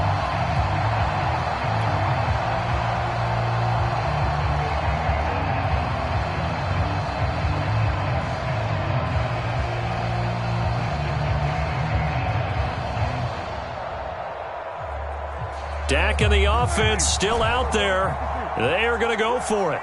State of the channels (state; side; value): identical; both; correlation 1.00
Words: Dak and the offense still out there. They are going to go for it.